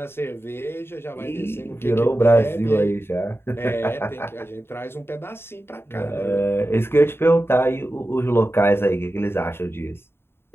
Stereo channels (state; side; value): late; right; 0.11 ms